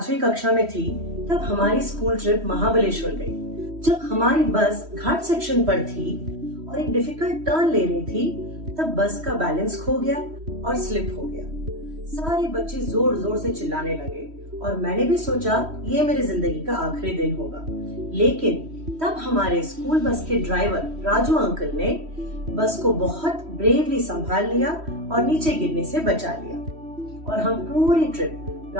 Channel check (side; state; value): left; late; 3.1 ms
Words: कक्षा में थी तब हमारी स्कूल ट्रिप महाबलेश्वर गई। जब हमारी बस घाट सेक्शन पर थी और एक डिफिकल्ट टर्न ले रही थी तब बस का बैलेंस खो गया और स्लिप हो गया। सारे बच्चे जोर जोर से चिल्लाने लगे और मैंने भी सोचा ये मेरी जिंदगी का आखिरी दिन होगा। लेकिन तब हमारे स्कूल बस के ड्राइवर राजू अंकल ने बस को बहुत ब्रेवली संभाल लिया और नीचे गिरने से बचा लिया और हम पूरी ट्रिप